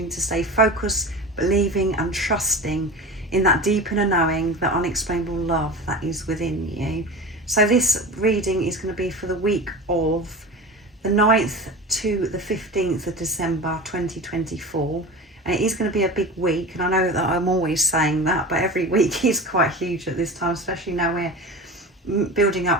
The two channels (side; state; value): both; normal; correlation 0.31